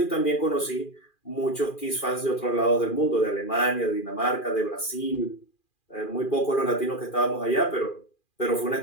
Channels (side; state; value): right; late; 2.4 ms